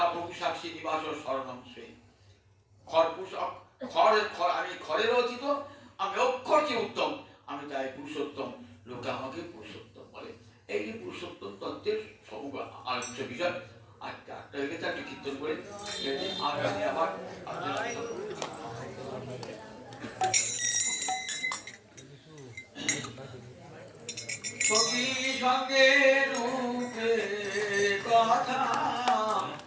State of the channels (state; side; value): identical; both; correlation 1.00